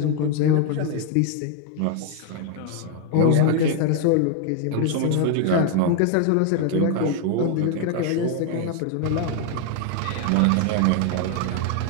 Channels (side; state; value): both; different; correlation 0.01